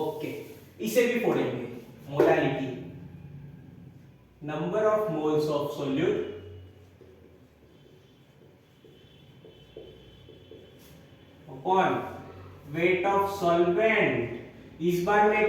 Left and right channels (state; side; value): identical; both; correlation 1.00